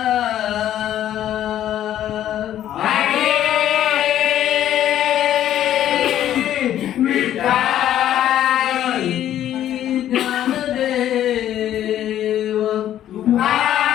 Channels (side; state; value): right; quieter; 11.7 dB